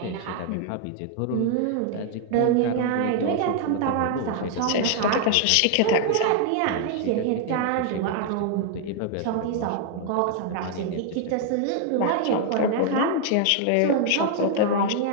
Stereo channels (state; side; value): different; both; correlation 0.00